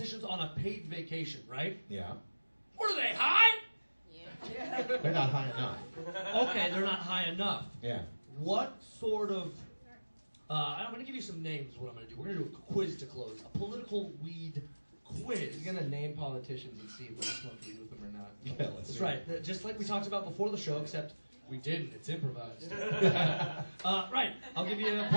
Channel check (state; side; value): inverted; both; correlation -1.00